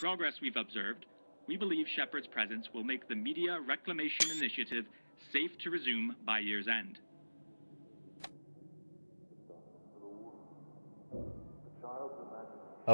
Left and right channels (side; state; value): both; inverted; correlation -1.00